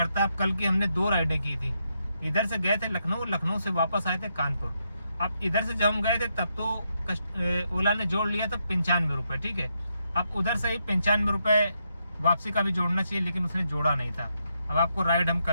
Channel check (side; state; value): both; inverted; correlation -0.80